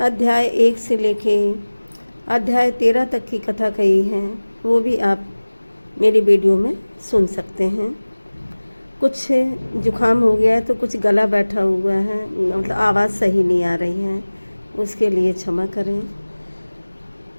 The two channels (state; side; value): inverted; both; correlation -1.00